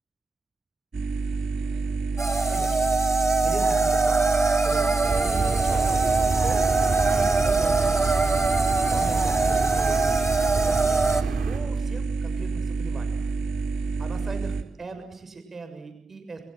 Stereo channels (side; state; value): left; quieter; 3.4 dB